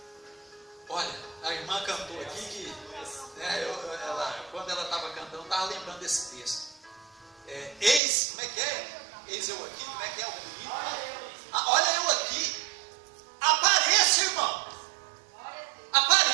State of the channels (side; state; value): left; drops out; at 8.0 s